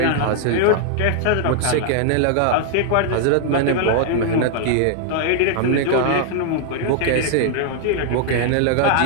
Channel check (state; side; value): different; both; correlation 0.00